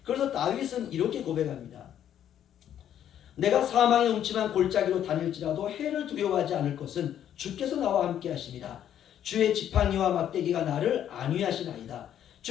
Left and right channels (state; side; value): quieter; right; 10.3 dB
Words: 그래서 다윗은 이렇게 고백합니다. 내가 사망의 음침한 골짜기로 다닐지라도 해를 두려워하지 않을 것은 주께서 나와 함께 하십니다. 주의 지팡이와 막대기가 나를 안위하시나이다.